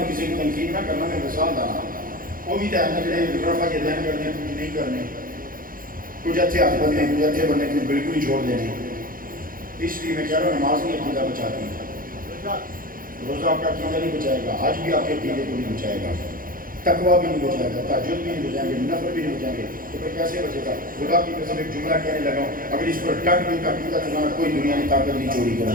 کسی کی تنقید نہ کرنا میں مثال دانا وہ بھی تیرنے کے رفع یہ دہن کرنے کچھ نہیں کرنے کچھ اچھے ہاتھ بننے کچھ اچھے بننے کچھ بالکل ہی چھوڑ دینے اس لیے میں کہہ رہا ہوں نماز نہیں عقیدہ بچاتی روزہ آپ کا عقیدہ نہیں بچائے گا حج بھی آپ کے عقیدے کو نہیں بچائے گا تقویٰ بھی نہیں بچائے گا تہجد بھی نہیں بچائیں گے نفل بھی نہیں بچائیں گے تو پھر کیسے بچے گا خدا کی قسم ایک جملہ کہنے لگا ہوں اگر اس پر ڈٹ بھی عقیدہ تو کوئی دنیا کی طاقت نہیں چوری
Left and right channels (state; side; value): late; left; 0.41 ms